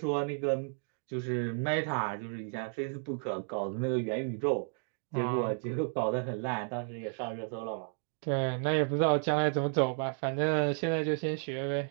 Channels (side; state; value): left; silent; 56 dB below the other